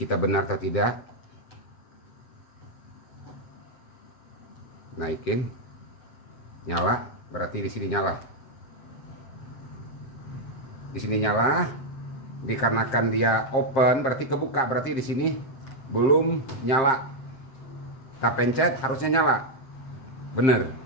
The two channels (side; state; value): right; late; 7.6 ms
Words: benar atau tidak. Naikin, nyala, berarti di sini nyala. Di sini nyala, dikarenakan dia open berarti kebuka, berarti di sini belum nyala. Kita pencet harusnya nyala, bener.